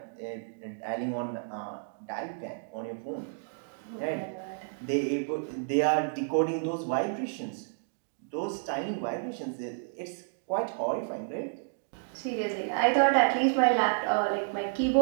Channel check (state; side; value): silent; left; digital silence